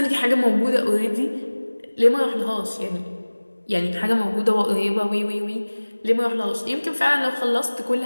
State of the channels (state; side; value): inverted; both; correlation -1.00